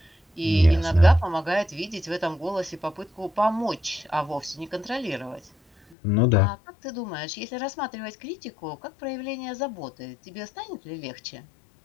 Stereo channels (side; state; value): right; drops out; at 6.0 s